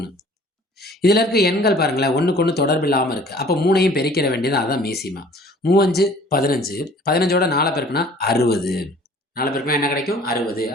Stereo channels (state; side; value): normal; both; correlation 0.52